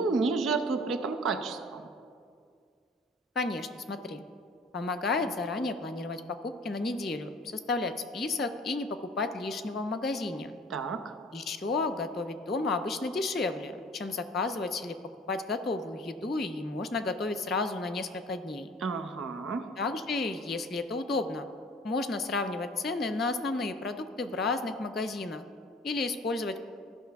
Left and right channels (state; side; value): normal; both; correlation 0.49